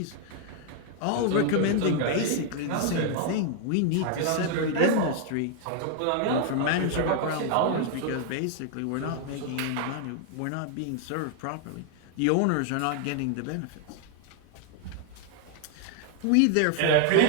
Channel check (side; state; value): both; different; correlation 0.00